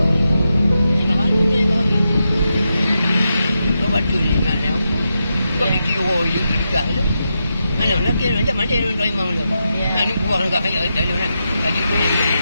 Batu ni nak lewat. Kau ni kira you dekat tu. Mana lagi macam mana dia nak imam tu. Ni buang dekat ayat dalam nak. Kaji tu.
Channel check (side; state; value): both; inverted; correlation -0.86